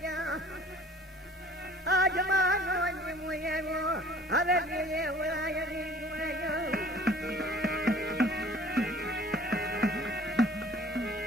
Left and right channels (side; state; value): both; normal; correlation 0.51